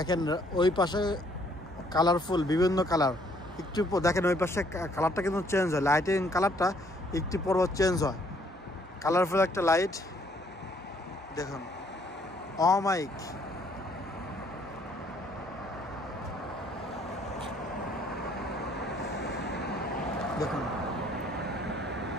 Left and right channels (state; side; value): normal; both; correlation 0.64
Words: ওই পাশে কালারফুল বিভিন্ন কালার, একটু দেখেন ওই পাশে কালারটা কিন্তু চেঞ্জ হয়, লাইটিং কালারটা একটু পর চেঞ্জ হয়, কালারফুল একটা লাইট দেখুন। অমাইক দেখুন,